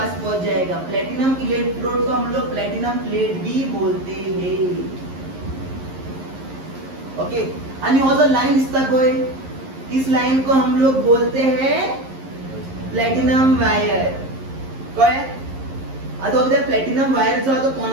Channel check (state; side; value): late; left; 11 ms